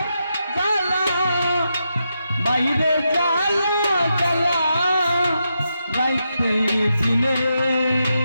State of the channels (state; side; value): inverted; both; correlation -0.85